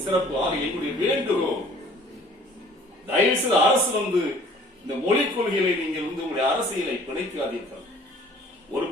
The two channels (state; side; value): normal; both; correlation 0.53